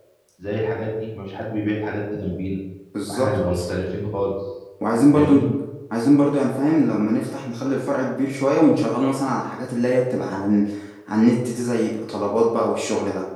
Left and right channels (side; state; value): both; identical; correlation 1.00